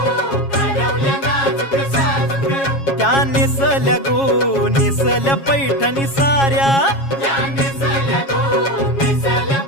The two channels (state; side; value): late; right; 7.3 ms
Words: त्या नेसल्या गो नेसल्या पैठणी साऱ्या,